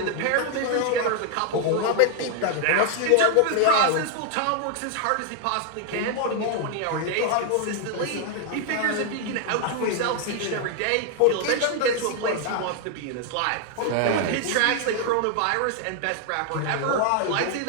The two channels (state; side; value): different; both; correlation 0.00